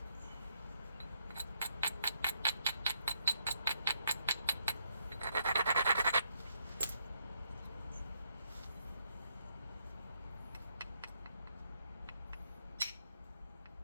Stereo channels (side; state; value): both; inverted; correlation -0.76